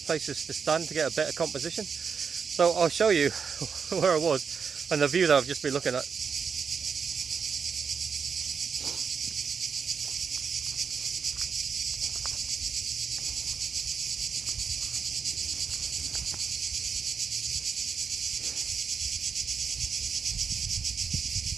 to stand to get a better composition, so I'll show you where I was and the view that I've just been looking at.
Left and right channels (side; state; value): left; quieter; 6.1 dB